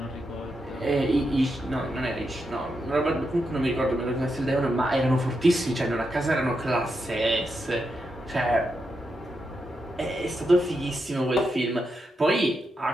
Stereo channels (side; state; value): both; normal; correlation 0.85